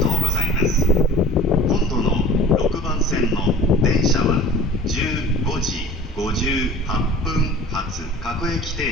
うございます。今度の6番線の電車は15時58分発各駅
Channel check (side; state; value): both; normal; correlation 0.43